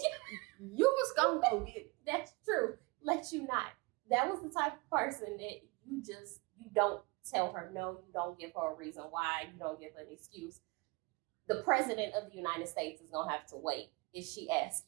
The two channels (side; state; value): left; quieter; 26.2 dB